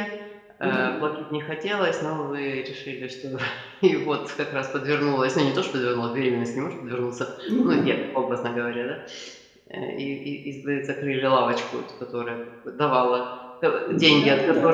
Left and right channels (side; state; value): both; identical; correlation 1.00